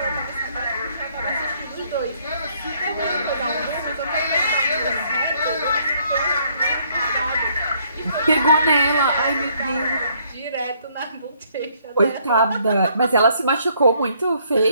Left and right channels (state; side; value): inverted; both; correlation -0.67